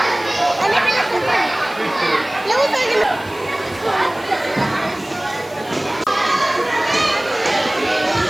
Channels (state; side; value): noise; left; hiss, 22 dB below the sound